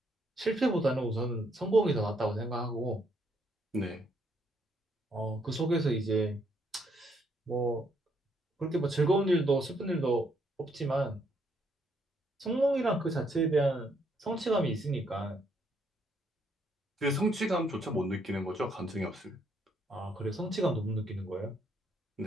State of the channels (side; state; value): both; normal; correlation 0.72